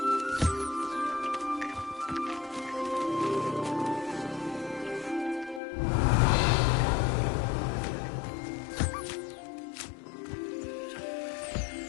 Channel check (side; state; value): right; drops out; at 5.6 s